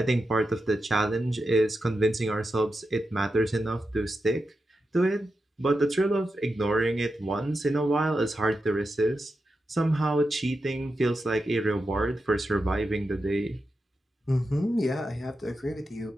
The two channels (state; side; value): normal; both; correlation 0.89